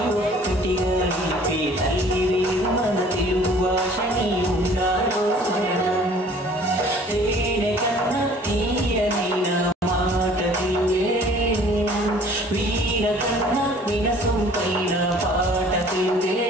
ఒక్కటిగా నిలిపే తల్లి వేరు మన తెలుగు భాషని ఉండాలో స్మరణం తేనె కన్న తీయనైన మాట తెలుగే వీణ కన్న వినసొంపైన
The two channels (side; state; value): both; normal; correlation 0.52